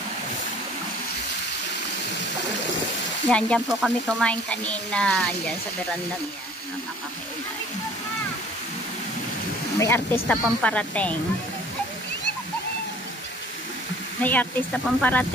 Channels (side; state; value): both; normal; correlation 0.52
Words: Dyan po kami kumain kanina. Dyan sa veranda niya. Nakakakailan. May artista pang parating. May artista pang